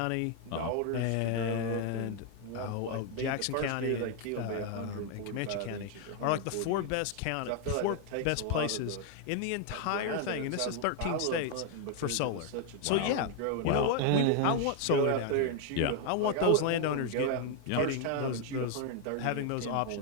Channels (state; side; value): different; both; correlation 0.00